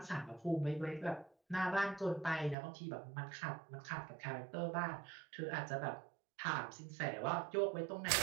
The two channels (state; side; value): drops out; left; at 2.6 s